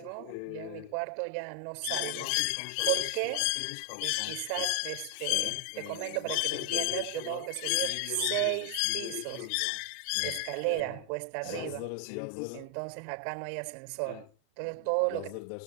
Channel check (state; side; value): different; both; correlation 0.00